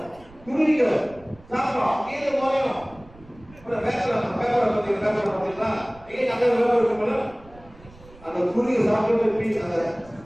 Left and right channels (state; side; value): noise; right; rumble, 23 dB below the sound